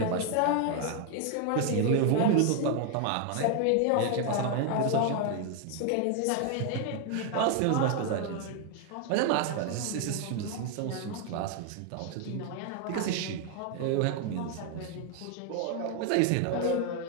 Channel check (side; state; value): both; different; correlation 0.01